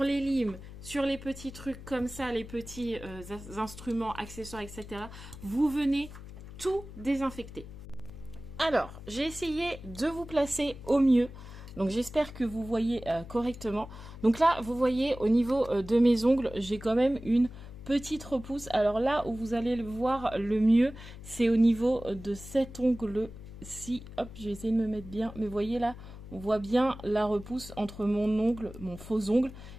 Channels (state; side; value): noise; left; hum, 14 dB below the sound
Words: les limes, sur les petits trucs comme ça, les petits instruments, accessoires, etc. Vous venez tout désinfecter. Alors, j'ai essayé de vous placer au mieux. Donc, j'espère que vous voyez correctement. Donc là, vous voyez au niveau de mes ongles, j'ai quand même une petite repousse. Alors là où vous allez le voir le mieux, c'est au niveau de cet ongle-ci. Hop, je vais essayer de me mettre bien. Mais vous voyez là, on voit bien la repousse entre mon ongle, mon faux ongle,